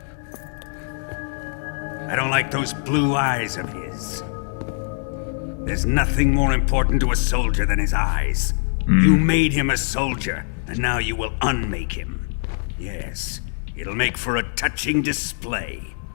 I don't like those blue eyes of his. There's nothing more important to a soldier than his eyes. You made him a soldier, and now you will unmake him. Yes, it'll make for a touching display.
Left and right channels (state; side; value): silent; right; 63 dB below the other